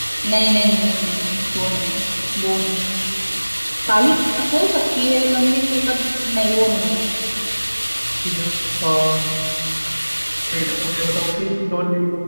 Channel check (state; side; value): inverted; both; correlation -1.00